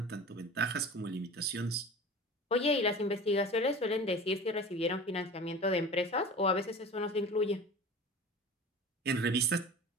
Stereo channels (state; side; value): normal; both; correlation 0.37